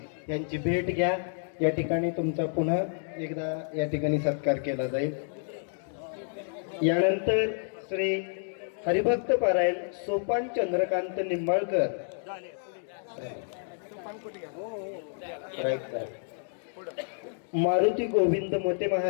यांची भेट घ्या. या ठिकाणी तुमचा पुन्हा एकदा या ठिकाणी सत्कार केला जाईल. यानंतर श्री हरिभक्त पारायण सोपान चंद्रकांत निंबाळकर मारुती गोविंद मोते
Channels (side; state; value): right; silent; digital silence